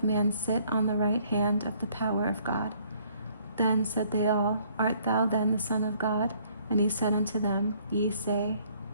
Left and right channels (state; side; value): inverted; both; correlation -0.63